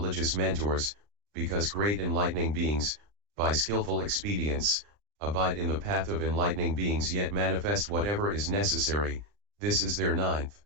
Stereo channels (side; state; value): left; late; 39 ms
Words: mentors, because great enlightening beings, by skillful expedients, abide in the path of enlightening beings yet manifest whatever is necessary. This is their ninth